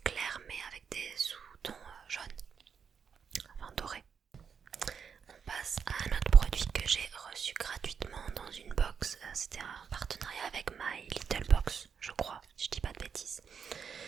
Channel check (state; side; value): quieter; left; 6.7 dB